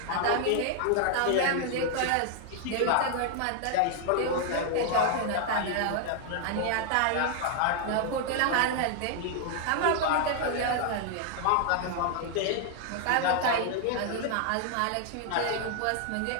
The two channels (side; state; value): both; different; correlation 0.00